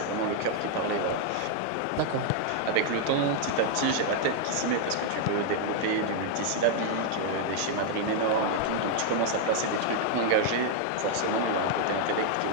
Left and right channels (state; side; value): different; both; correlation 0.00